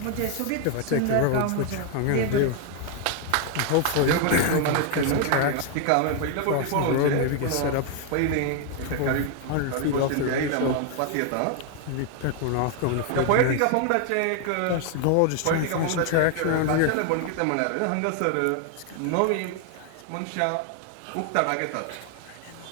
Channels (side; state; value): both; different; correlation 0.00